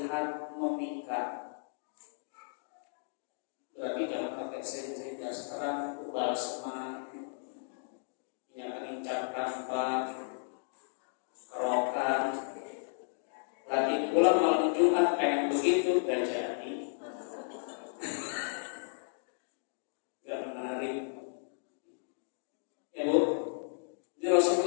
memikat. Berarti jangan pakai sering-sering sekarang ubah semangat, minyak angin cap kampak, kerokan. Lagi pula malam Jumat pengen begitu dan jadi gak menarik. Ya Bu, ini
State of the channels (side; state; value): right; silent; digital silence